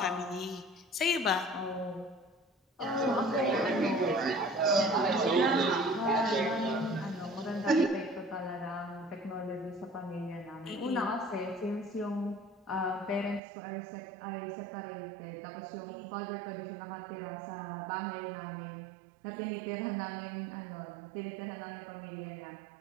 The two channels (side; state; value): left; drops out; at 13.4 s